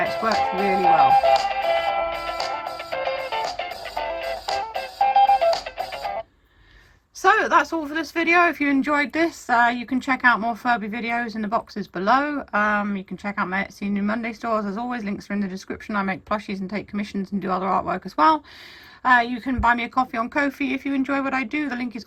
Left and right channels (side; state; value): both; identical; correlation 1.00